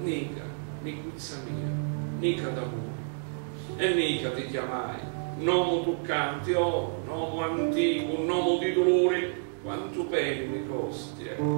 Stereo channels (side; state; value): left; silent; digital silence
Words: Nica, nicuzza mia, nica d'amore. E Nica ti chiamai, nomo toccante, oh, nomo antico, nomo di dolori, quanto peni mi costi e